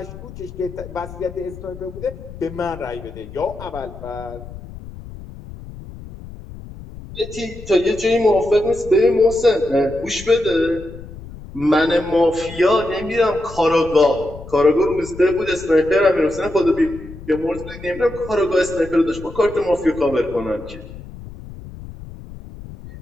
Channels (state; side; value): noise; left; rumble, 14 dB below the sound